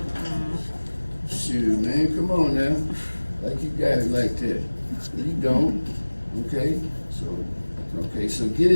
Shoot, man, come on now. Like you got it like that. You don't. Okay? So get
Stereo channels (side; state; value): both; inverted; correlation -1.00